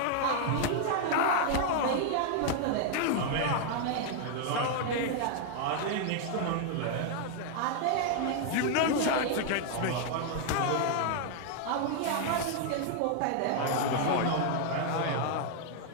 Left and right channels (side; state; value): both; different; correlation 0.00